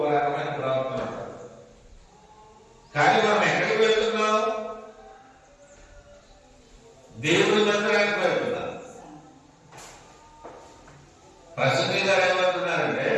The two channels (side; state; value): both; identical; correlation 1.00